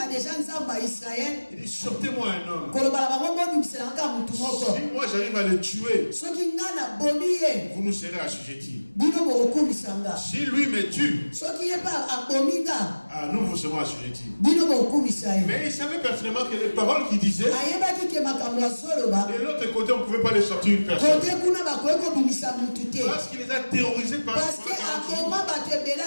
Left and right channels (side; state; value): both; inverted; correlation -1.00